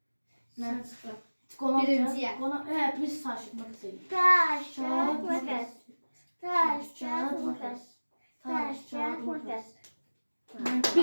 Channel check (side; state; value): both; inverted; correlation -1.00